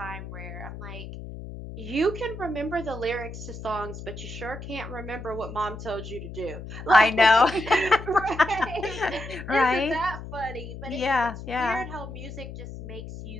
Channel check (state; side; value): noise; left; hum, 11 dB below the sound